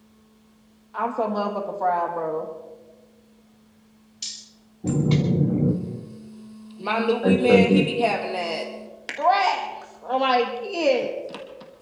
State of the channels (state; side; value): identical; both; correlation 1.00